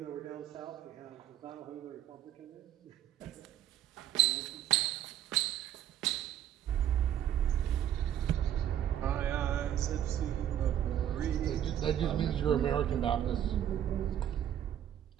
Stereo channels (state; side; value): quieter; left; 10.9 dB